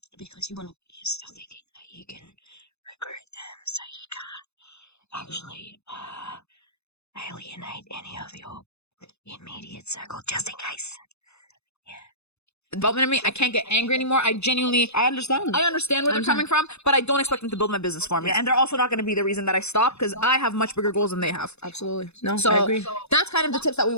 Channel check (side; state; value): right; late; 0.80 ms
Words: you're still thinking that you can recruit them, so you can't actually alienate any of your immediate circle, just in case. Development in me, I can't get angry anymore. I understand where they're coming from, but I don't expect them to build my business for me. And they're also not going to be the reason that I stop, because I have much bigger goals than they have. Absolutely. No, So I agree. that's kind of the tips that we